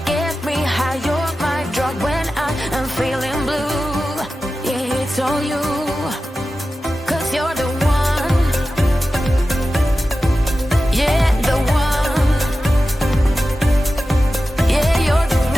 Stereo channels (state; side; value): normal; both; correlation 0.94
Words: get me high. You're my drug when I am feeling blue. Yeah, it's all you, 'cause you're the one. Yeah, the one. Yeah, you're the